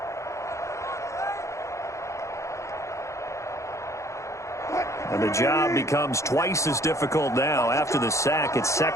And the job becomes twice as difficult now. After the sack, it's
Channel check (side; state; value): right; late; 0.14 ms